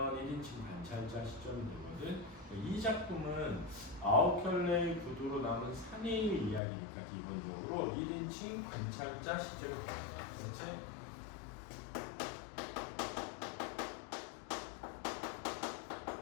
1인칭 관찰자 시점이 되거든. 이 작품은 9켤레의 구두로 남은 사내의 이야기니까 기본적으로 1인칭 관찰자 시점이 됩니다. 그렇지?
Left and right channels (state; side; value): drops out; right; at 6.6 s